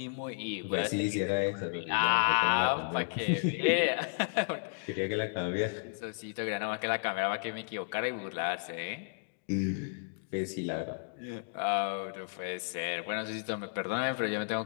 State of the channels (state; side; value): silent; right; digital silence